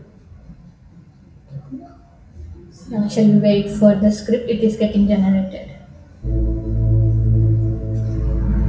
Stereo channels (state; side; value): identical; both; correlation 1.00